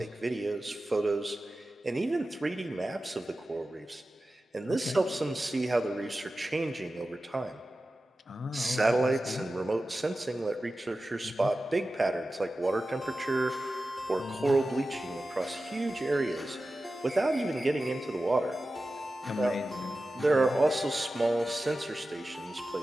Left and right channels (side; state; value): both; normal; correlation 0.94